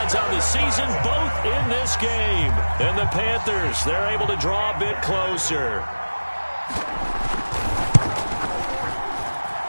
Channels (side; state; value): both; inverted; correlation -1.00